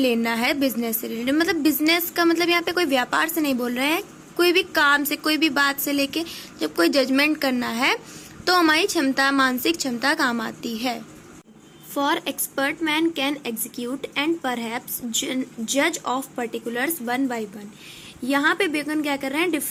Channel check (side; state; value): both; identical; correlation 1.00